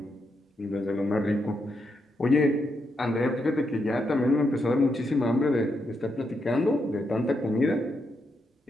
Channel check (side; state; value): both; normal; correlation 0.82